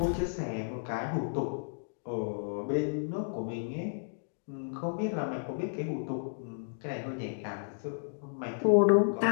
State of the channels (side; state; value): right; silent; digital silence